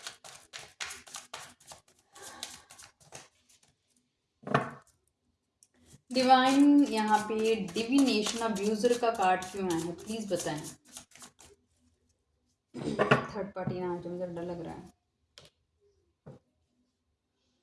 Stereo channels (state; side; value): identical; both; correlation 1.00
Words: डिवाइन यहाँ पे डिविनेशन अब्यूजर का कार्ड क्यों आया है, प्लीज बताएं। थर्ड पार्टी ना, जो मुझे डर लग रहा है।